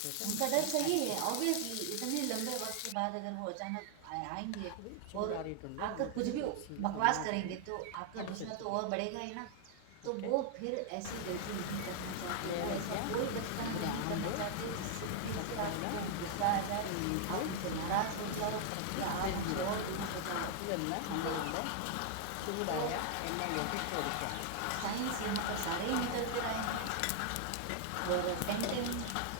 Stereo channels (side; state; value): both; different; correlation 0.00